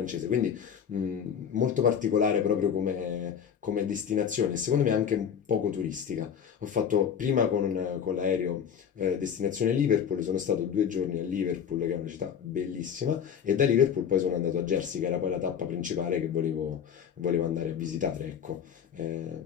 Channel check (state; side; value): quieter; right; 7.9 dB